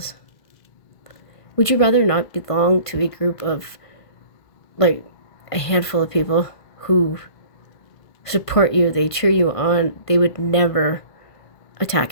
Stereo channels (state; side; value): late; right; 1.6 ms